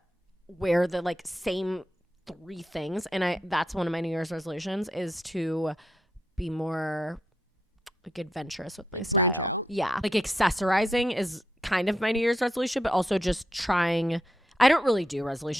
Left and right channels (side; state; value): both; normal; correlation 0.81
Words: wear the like same 3 things, and that's one of my New Year's resolutions, is to be more like adventurous with my style. Branch out. Yeah, like accessorizing is kind of my New Year's resolution, but also just trying. I don't really do